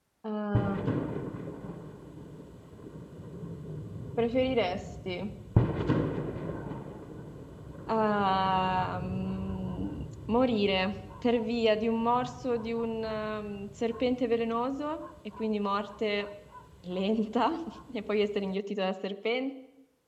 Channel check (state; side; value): identical; both; correlation 1.00